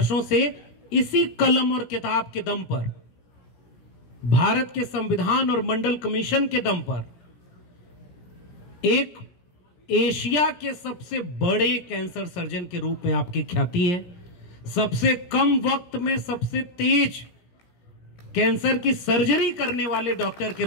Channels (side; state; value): right; late; 17 ms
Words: से इसी कलम और किताब के दम पर, भारत के संविधान और मंडल कमीशन के दम पर एक एशिया के सबसे बड़े कैंसर सर्जन के रूप में आपकी ख्याति है। सबसे कम वक्त में सबसे तेज कैंसर की सर्जरी करने वाले डॉक्टर के